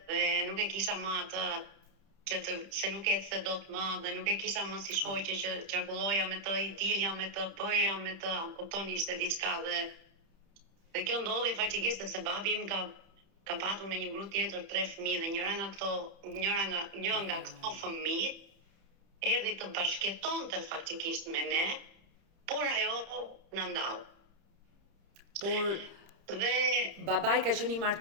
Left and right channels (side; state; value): left; late; 30 ms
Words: dhe nuk e kisha më atë se nuk ecse dot më dhe nuk e kisha më si shoqe që qarkulloja me të, i dilja me të, bëja me të, kupton, ishte diçka dhe kjo ndodhi faktikisht sepse babi im ka patur me një gru tjetër 3 fëmijë dhe një nga këto fëmijë erdhi të bashkëtonte faktikisht me ne, por ajo na ndau. Por babai ka qenë i